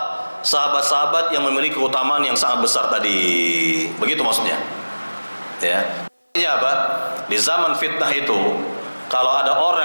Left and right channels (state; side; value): inverted; both; correlation -1.00